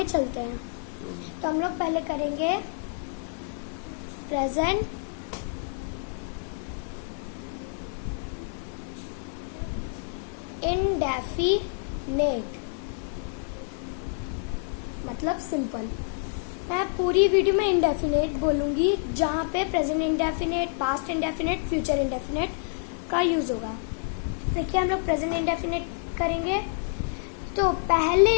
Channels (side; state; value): right; silent; 59 dB below the other